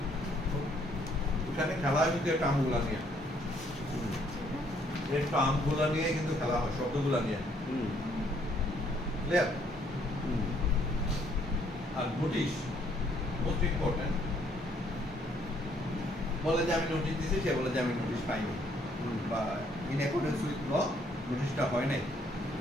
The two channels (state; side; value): normal; both; correlation 0.67